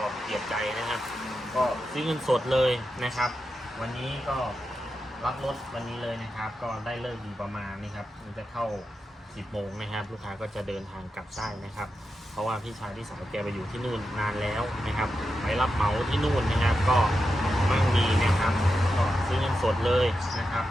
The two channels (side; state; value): both; normal; correlation 0.89